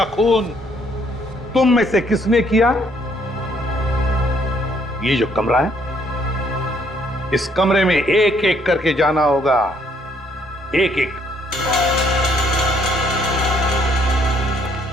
खून तुम में से किसने किया? ये जो कमरा है, इस कमरे में एक एक करके जाना होगा, एक एक।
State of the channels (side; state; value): both; normal; correlation 0.67